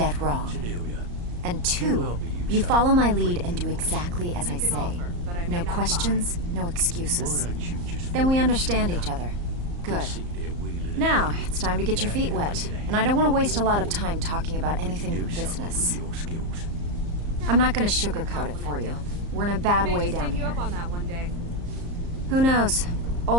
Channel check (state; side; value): late; left; 34 ms